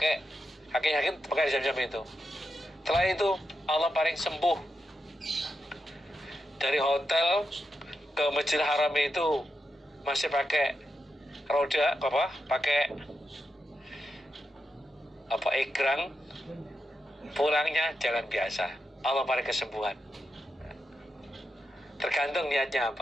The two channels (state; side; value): normal; both; correlation 0.86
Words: kaki pakai Zamzam itu. Setelah itu Allah paling sembuh. Dari hotel ke Masjidil Haram itu masih pakai roda pakai egrang, pulangnya jalan biasa. Allah paling kesembuhan. Tergantung niatnya